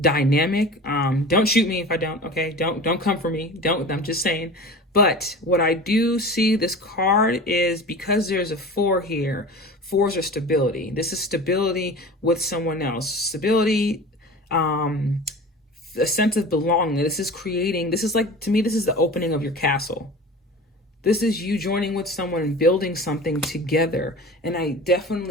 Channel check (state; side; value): normal; both; correlation 0.36